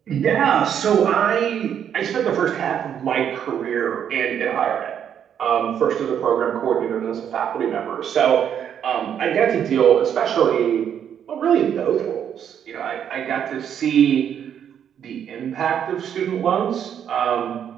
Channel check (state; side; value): quieter; left; 8.9 dB